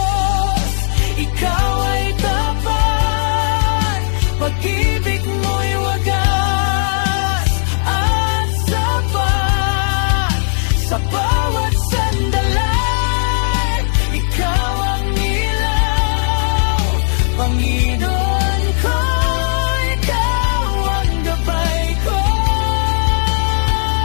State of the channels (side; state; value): right; silent; digital silence